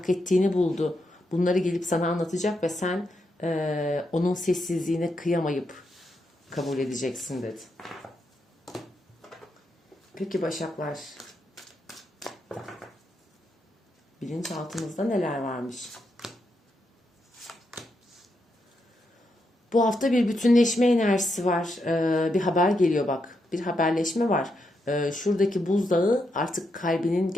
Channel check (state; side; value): normal; both; correlation 0.82